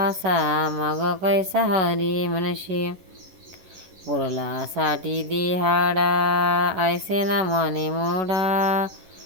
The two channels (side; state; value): left; late; 11 ms